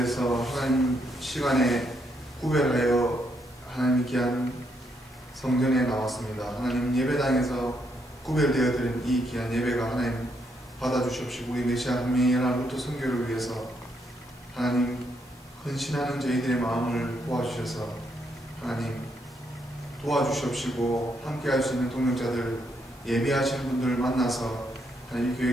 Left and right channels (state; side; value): normal; both; correlation 0.76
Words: 하나님 시간에 구별하여 하나님 귀한 성전에 나왔습니다. 하나님 예배당에서 구별되어 드린 이 귀한 예배가 하나님 받아주시옵시고, 우리 메시아 한미연합 루터 선교를 위해서 하나님 헌신하는 저희들의 마음을 도와주셔서 하나님 도와주시옵시고, 함께 할 수 있는 동역자들, 예배하시는 분들 만나서 하나님